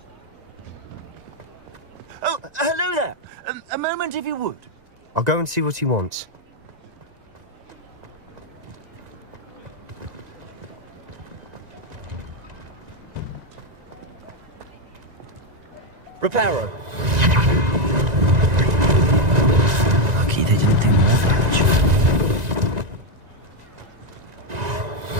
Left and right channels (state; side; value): late; left; 1.9 ms